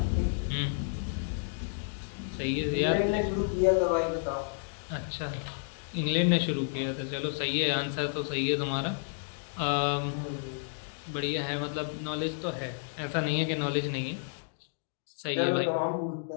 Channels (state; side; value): silent; right; digital silence